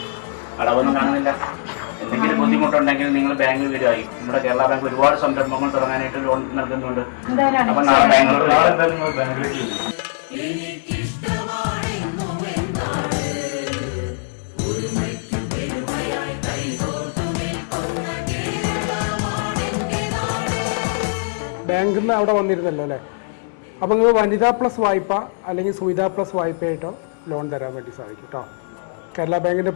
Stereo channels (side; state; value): right; silent; digital silence